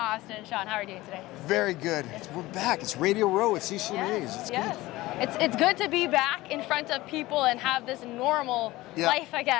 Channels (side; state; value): right; quieter; 18.7 dB